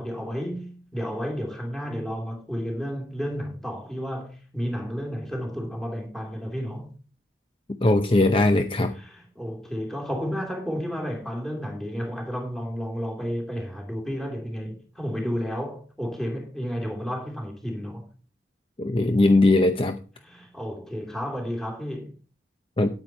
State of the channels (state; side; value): normal; both; correlation 0.84